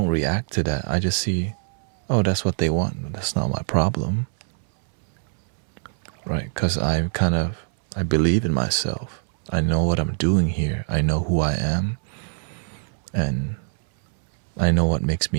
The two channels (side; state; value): left; silent; 63 dB below the other